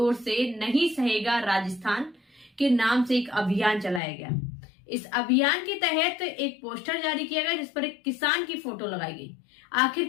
से नहीं सहेगा राजस्थान के नाम से एक अभियान चलाया गया। इस अभियान के तहत एक पोस्टर जारी किया गया जिस पर एक किसान की फोटो लगाई गई। आखिर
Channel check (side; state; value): right; drops out; at 4.0 s